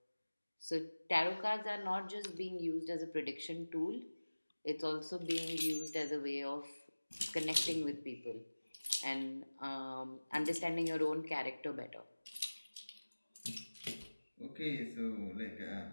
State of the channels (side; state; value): both; inverted; correlation -1.00